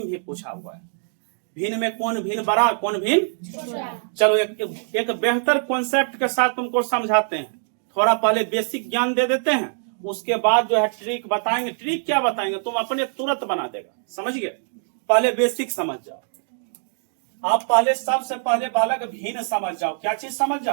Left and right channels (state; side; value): silent; left; digital silence